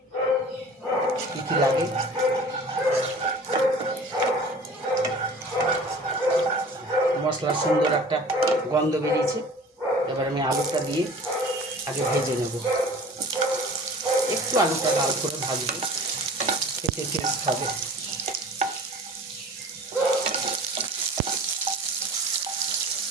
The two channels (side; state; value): both; normal; correlation 0.43